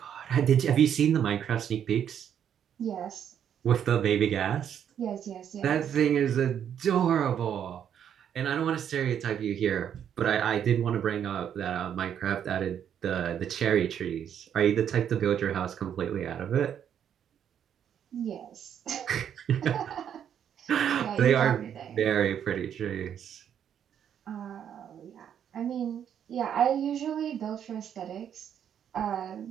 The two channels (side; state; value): left; quieter; 9.0 dB